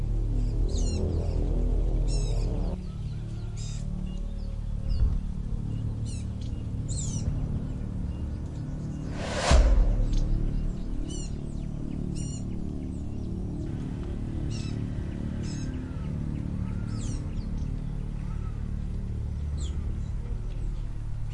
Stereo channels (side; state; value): both; identical; correlation 1.00